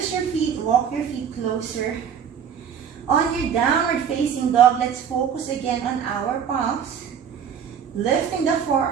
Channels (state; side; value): quieter; left; 7.9 dB